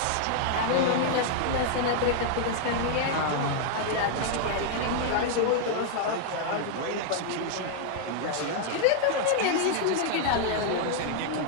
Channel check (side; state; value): both; different; correlation 0.00